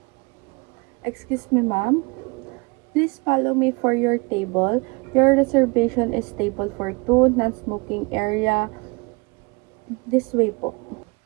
Excuse me, ma'am. Please follow me for your table. Your reservation is table for two, non-smoking area. This way po.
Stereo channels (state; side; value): quieter; left; 28.4 dB